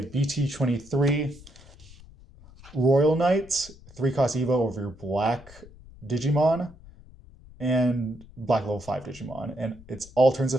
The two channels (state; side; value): noise; left; rumble, 21 dB below the sound